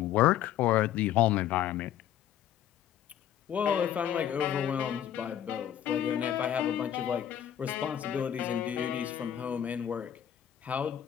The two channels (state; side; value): quieter; right; 10.4 dB